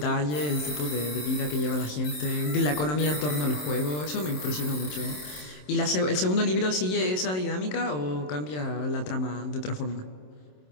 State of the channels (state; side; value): late; right; 27 ms